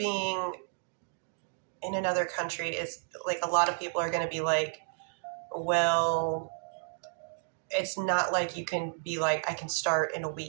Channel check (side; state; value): left; silent; digital silence